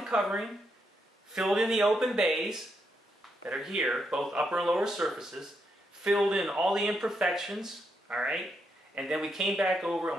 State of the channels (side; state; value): both; normal; correlation 0.80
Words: covering, filled in the open bays that are here, both upper and lower surfaces, filled in all the imperfections, alright, and then we came back over and